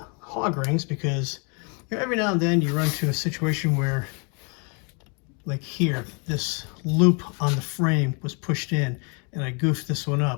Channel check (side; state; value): right; quieter; 35.5 dB